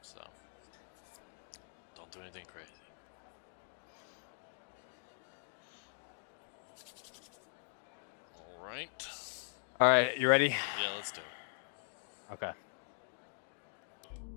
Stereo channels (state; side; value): silent; right; digital silence